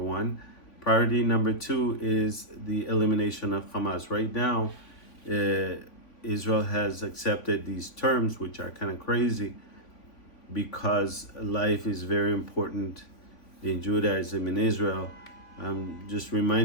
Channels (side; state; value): right; late; 3.5 ms